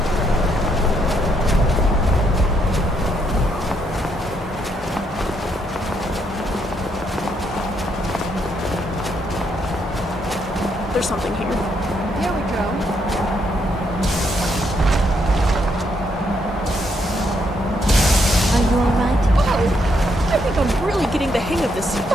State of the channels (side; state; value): both; normal; correlation 0.75